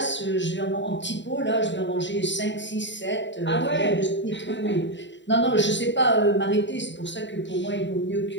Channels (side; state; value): right; late; 0.53 ms